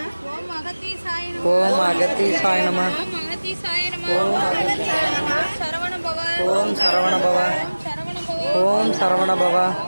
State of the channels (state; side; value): inverted; both; correlation -1.00